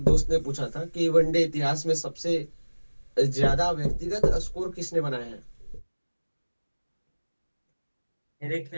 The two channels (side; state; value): both; inverted; correlation -1.00